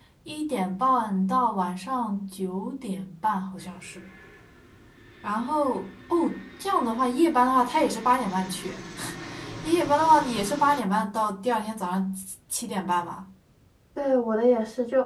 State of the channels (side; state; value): both; identical; correlation 1.00